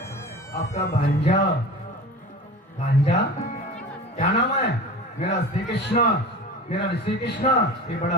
आपका भांजा. भांजा क्या नाम है. मेरा श्री कृष्ण, मेरा श्री कृष्ण, ये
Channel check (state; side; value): normal; both; correlation 0.35